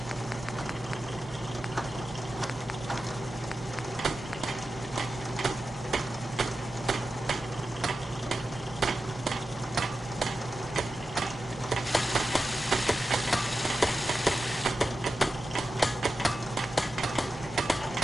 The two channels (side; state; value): both; normal; correlation 0.92